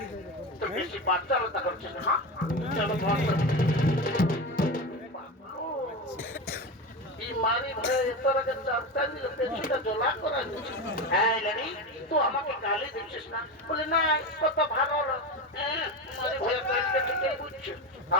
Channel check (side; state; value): both; normal; correlation 0.21